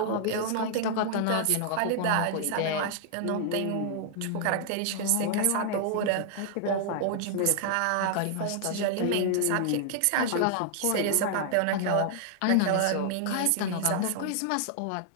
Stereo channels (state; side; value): different; both; correlation -0.01